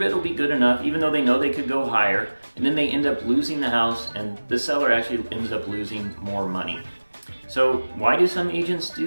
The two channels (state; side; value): inverted; both; correlation -1.00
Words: will be good enough, even though they know they could go higher, and then they end up losing the house, and the seller actually ends up losing more money. So why do some agents